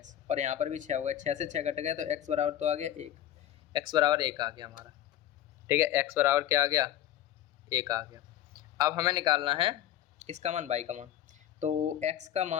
और यहाँ पर भी 6 हो गया, 6 से 6 कट गया तो x बराबर तो आ गया 1, x बराबर 1 आ गया हमारा। ठीक है, x बराबर क्या आ गया 1 आ गया। अब हमें निकालना है किसका मान, बाई का मान। तो x का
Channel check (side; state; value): right; quieter; 12.1 dB